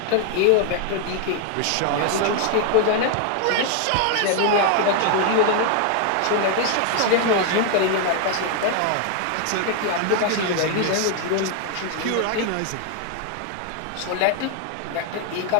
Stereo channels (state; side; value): different; both; correlation 0.00